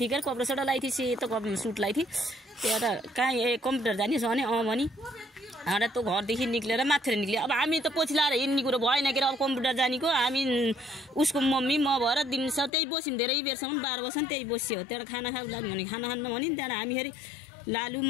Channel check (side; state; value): right; drops out; at 12.7 s